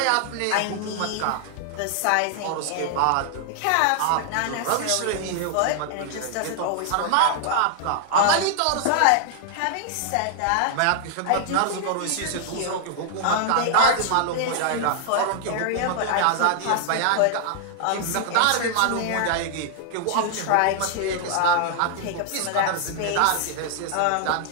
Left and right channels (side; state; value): both; different; correlation 0.00